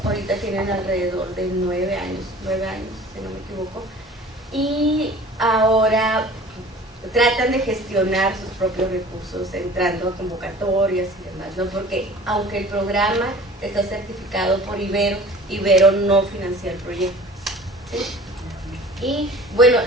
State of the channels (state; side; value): normal; both; correlation 0.45